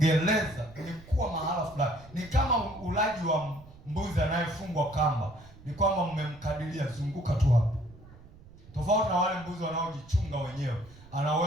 ni kuwa mahala fulani. Ni kama ulaji wa mbuzi anayefungwa kamba. Ni kwamba mmemkadiria, zunguka tu hapo. Tofauti na wale mbuzi wanaojichunga wenyewe. Ana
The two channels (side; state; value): right; noise; rumble, 21 dB below the sound